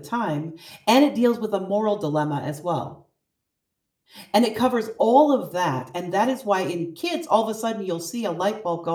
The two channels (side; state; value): both; identical; correlation 1.00